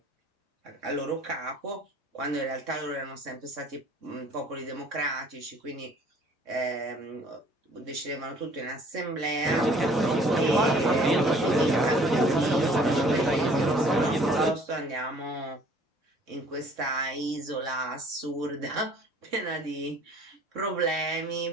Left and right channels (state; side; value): normal; both; correlation 0.55